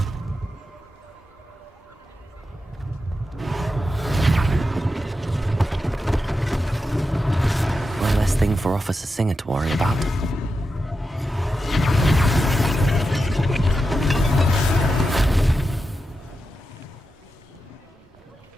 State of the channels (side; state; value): both; normal; correlation 0.89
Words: One less thing for Officer Singer to worry about.